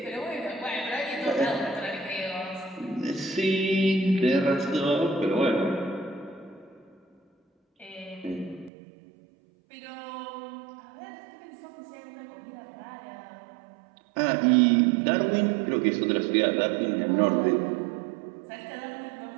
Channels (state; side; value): drops out; left; at 8.7 s